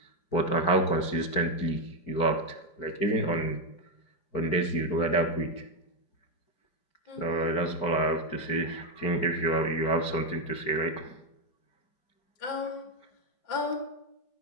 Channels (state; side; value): late; right; 4.6 ms